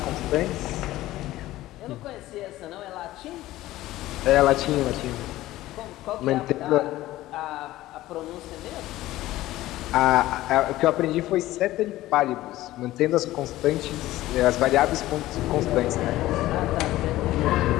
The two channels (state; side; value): quieter; right; 16.1 dB